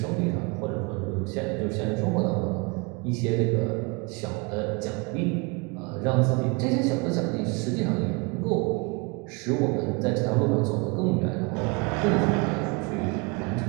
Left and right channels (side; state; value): left; quieter; 29.4 dB